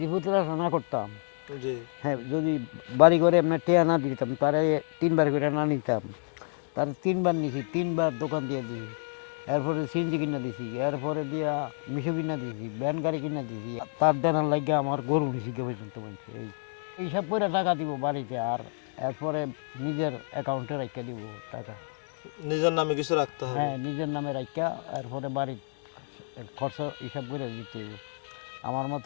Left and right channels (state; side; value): silent; right; 55 dB below the other